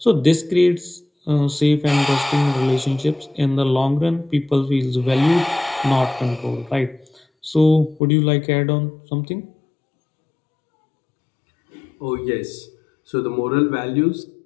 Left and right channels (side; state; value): right; drops out; at 8.0 s